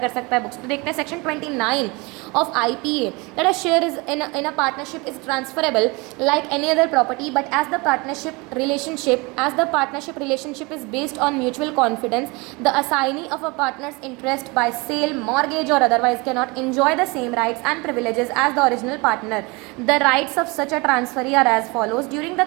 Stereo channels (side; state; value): left; quieter; 26.6 dB